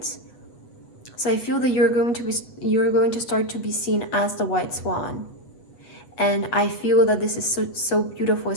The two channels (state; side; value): late; right; 8.2 ms